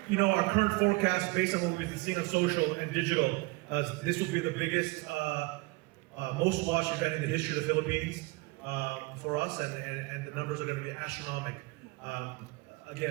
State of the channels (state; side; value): quieter; left; 24.4 dB